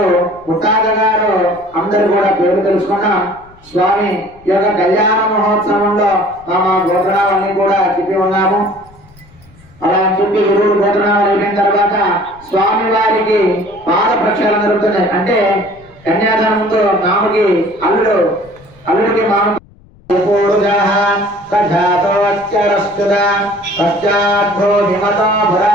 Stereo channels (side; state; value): left; noise; rumble, 26 dB below the sound